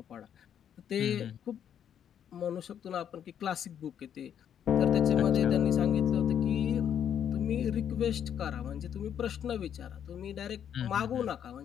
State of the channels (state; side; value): quieter; right; 9.1 dB